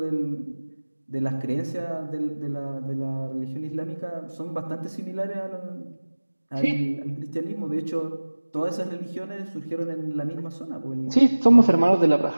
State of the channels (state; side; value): inverted; both; correlation -1.00